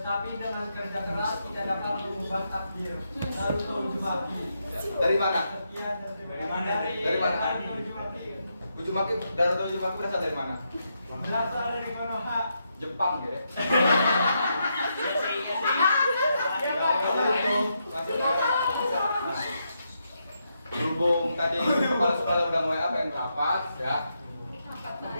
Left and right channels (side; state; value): both; inverted; correlation -0.82